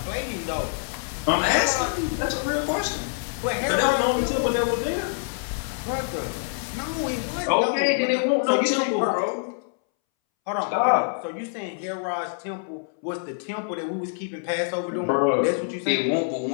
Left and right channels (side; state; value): right; silent; 61 dB below the other